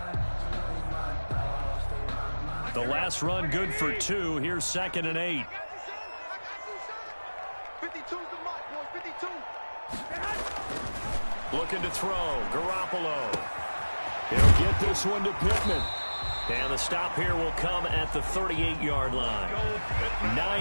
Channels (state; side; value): inverted; both; correlation -1.00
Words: The last run good for 2. Here's 2nd and 8. 52's the mark, boys, 52. Looking to throw. Garoppolo. He'll get this one to Pittman. And the stop here will come at the 38-yard line.